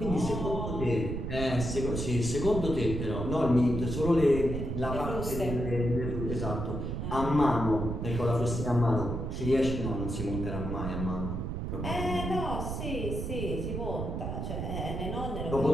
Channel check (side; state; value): right; noise; rumble, 3 dB below the sound